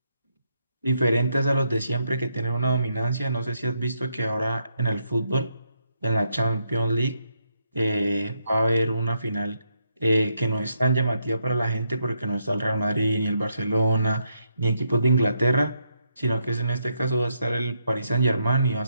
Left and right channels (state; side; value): inverted; both; correlation -0.79